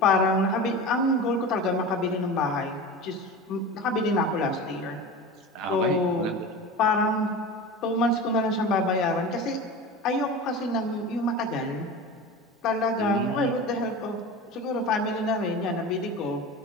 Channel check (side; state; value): both; normal; correlation 0.30